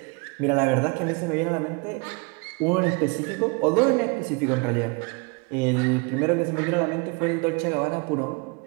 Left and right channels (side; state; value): left; quieter; 31.0 dB